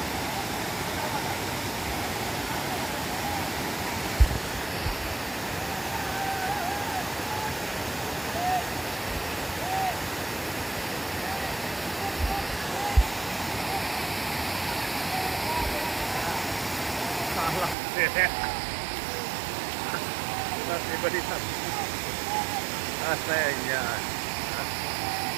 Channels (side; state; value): left; drops out; at 17.8 s